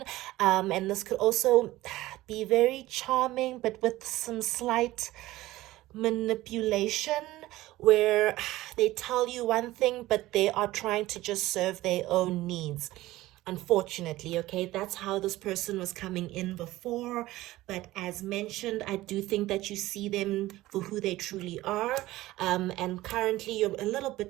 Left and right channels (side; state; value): left; quieter; 17.1 dB